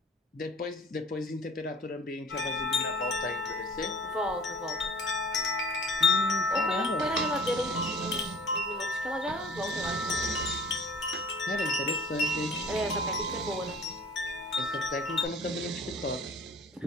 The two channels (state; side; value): normal; both; correlation 0.46